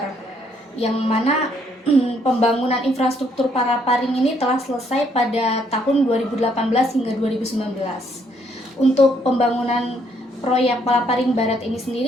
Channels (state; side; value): normal; both; correlation 0.69